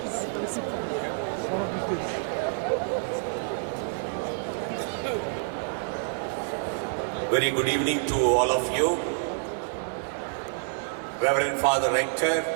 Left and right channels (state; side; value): silent; left; digital silence